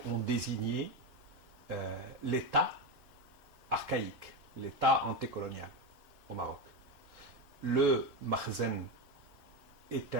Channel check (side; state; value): both; normal; correlation 0.14